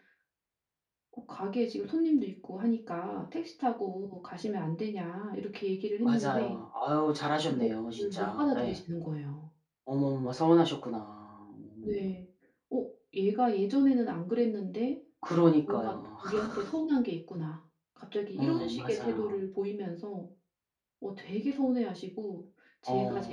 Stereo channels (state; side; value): identical; both; correlation 1.00